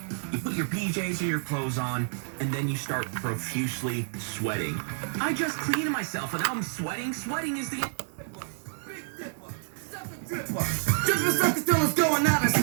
you put your PJs or your clothes on, and then you start profusely sweating. I just cleaned myself and now I'm sweating. Sweating is the... Drippin' sucker still is going out of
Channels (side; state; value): left; silent; 59 dB below the other